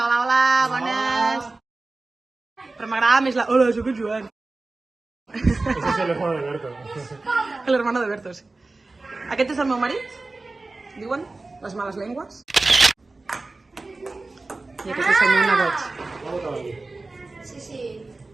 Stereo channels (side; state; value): left; quieter; 3.4 dB